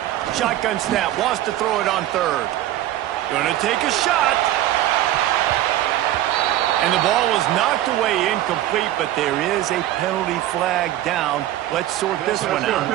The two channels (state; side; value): quieter; left; 13.6 dB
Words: Shotgun snap. Wants to throw it on 3rd. Gonna take a shot. And the ball was knocked away incomplete, but there is a penalty flag down. Let's sort this one out.